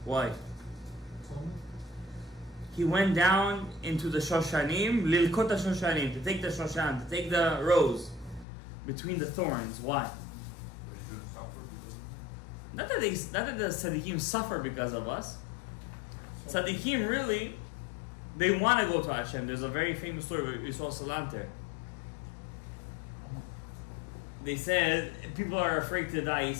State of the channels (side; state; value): right; drops out; at 8.5 s